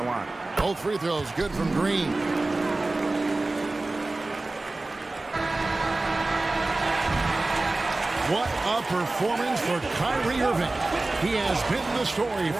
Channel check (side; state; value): left; quieter; 3.1 dB